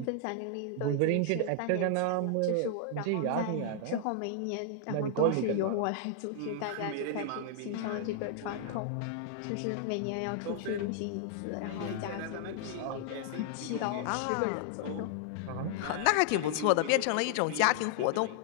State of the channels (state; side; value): different; both; correlation 0.00